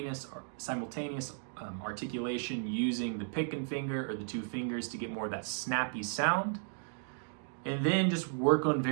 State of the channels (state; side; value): silent; left; digital silence